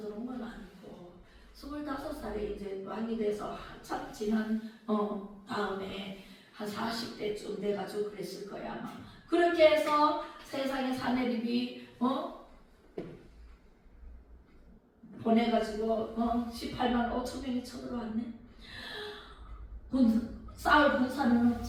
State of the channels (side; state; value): both; identical; correlation 1.00